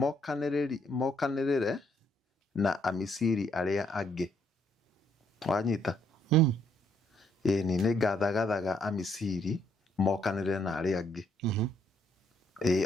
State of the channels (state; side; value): normal; both; correlation 0.70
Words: mokanĩrĩre na Amisiri arĩa angĩ wanyita ĩni nĩ ngathagathaga Amisiri mokanĩrĩre na arĩa angĩ